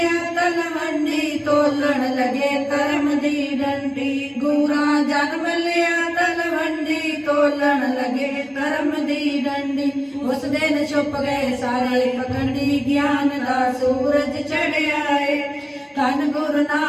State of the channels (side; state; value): both; identical; correlation 1.00